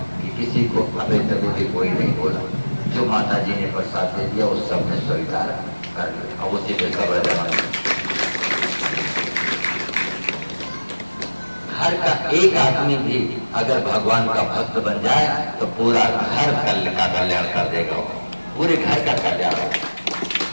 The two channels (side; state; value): both; inverted; correlation -1.00